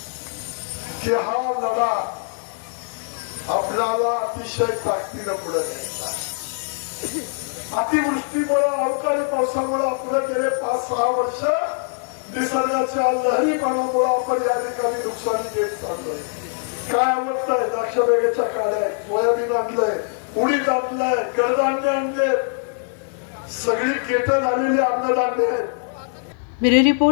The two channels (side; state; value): right; silent; 64 dB below the other